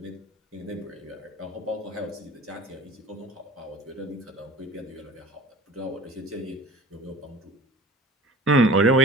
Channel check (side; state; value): both; normal; correlation 0.42